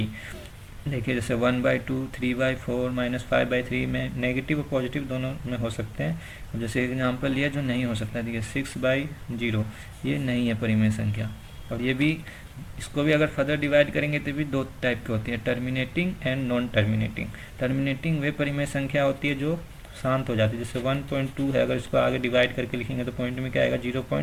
देखिए जैसे 1/2, 3/4, -5/3 में नेगेटिव और पॉजिटिव दोनों में हो सकते हैं। अब जैसे एग्जांपल लिया जो नहीं हो सकता, देखिए 6/0, ये नहीं है परिमेय संख्या। और ये भी, इसको भी अगर फर्दर डिवाइड करेंगे तो भी दो टाइप की होती है, terminating and non terminating. Terminating वे परिमेय संख्या होती है जो शांत हो जाती है, जैसे 1.2 है, अगर इसको आगे डिवाइड करके लिखेंगे तो पॉइंट में क्या आएगा,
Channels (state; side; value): identical; both; correlation 1.00